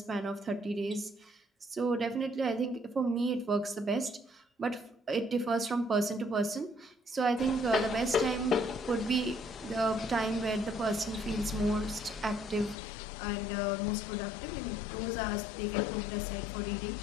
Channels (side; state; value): right; drops out; at 12.8 s